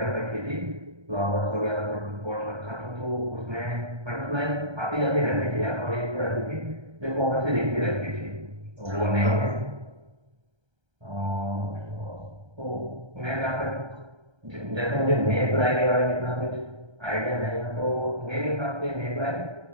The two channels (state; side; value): late; left; 1.3 ms